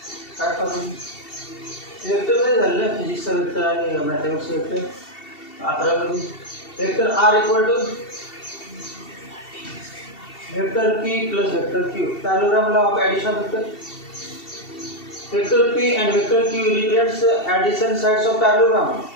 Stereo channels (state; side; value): late; right; 2.7 ms